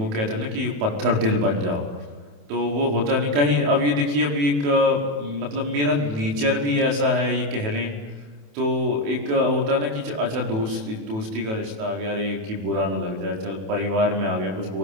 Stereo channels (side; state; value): left; late; 28 ms